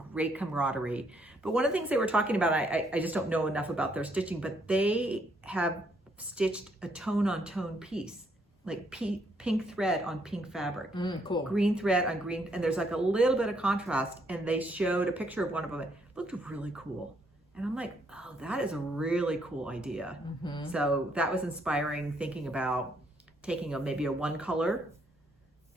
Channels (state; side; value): normal; both; correlation 0.71